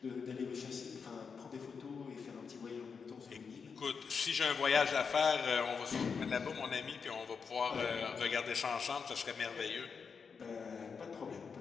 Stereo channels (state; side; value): quieter; right; 5.8 dB